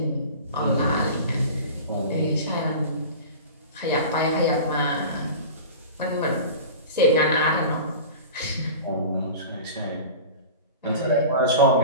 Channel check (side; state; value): both; inverted; correlation -0.35